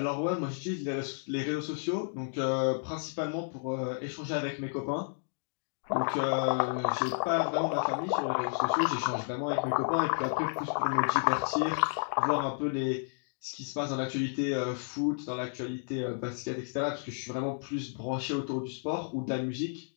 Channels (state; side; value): silent; right; digital silence